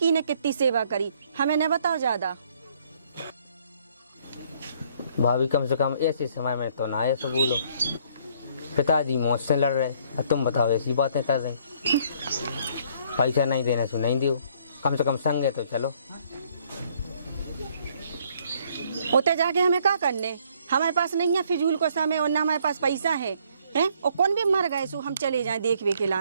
ने कितनी सेवा करी, हमें न बताओ ज्यादा। भाभी कम से कम ऐसे समय में तो ना ऐसा बोलो, पिताजी मौत से लड़ रहे और तुम बताओ ऐसी बातें कर रहे। पैसा नहीं देने से नहीं दो, कम से कम संगे तो चलो। उते जाके हमें क्या करने, हमारे पास नहीं है फिजूल को समय और ना हमारे पास पैसा है हैं? और कौन भी मर गए सो हम चले जाएं देखवे के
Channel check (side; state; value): both; inverted; correlation -0.64